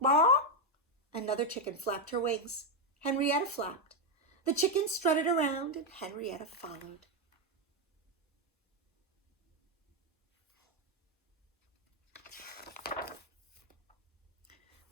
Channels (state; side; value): normal; both; correlation 0.04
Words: Another chicken flapped her wings. Henrietta flapped. The chickens strutted around and Henrietta followed.